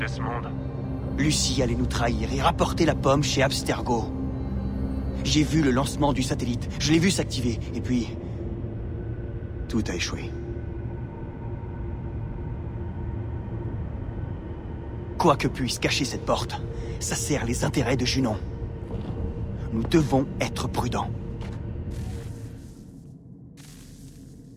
Lucie allait nous trahir et rapporter la pomme chez Abstergo. J'ai vu le lancement du satellite. Je l'ai vu s'activer. Et puis... tout a échoué. Quoi que puisse cacher cette porte, ça sert les intérêts de Junon. Nous devons être prudents.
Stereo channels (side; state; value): both; identical; correlation 1.00